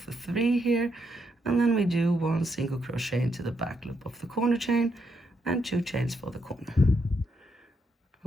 the 3 here. And then we do 1 single crochet into the back loop of the corner chain and 2 chains for the corner.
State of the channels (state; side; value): normal; both; correlation 0.79